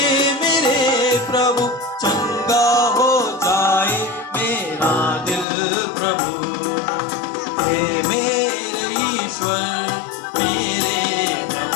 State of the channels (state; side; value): drops out; right; at 5.5 s